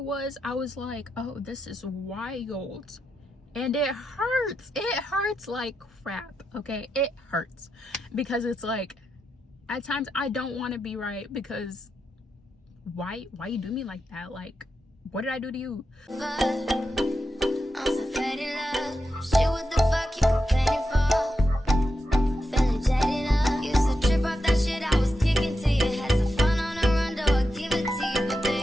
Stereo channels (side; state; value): both; normal; correlation 0.87